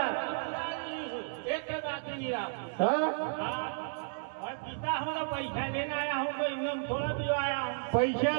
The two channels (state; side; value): silent; left; digital silence